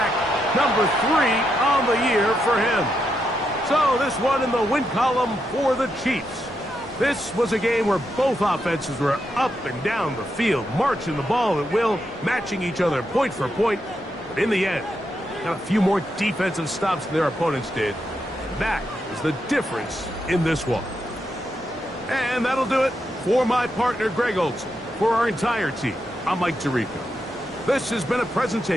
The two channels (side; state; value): both; normal; correlation 0.83